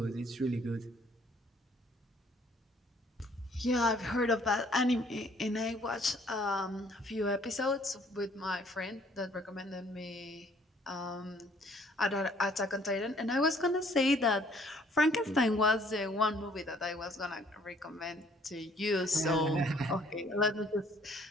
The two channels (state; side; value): normal; both; correlation 0.61